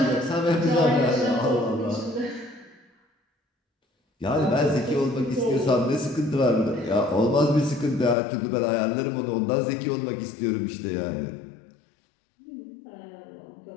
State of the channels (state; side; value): drops out; right; at 8.2 s